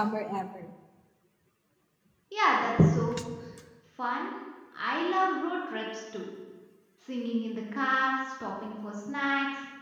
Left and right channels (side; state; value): both; identical; correlation 1.00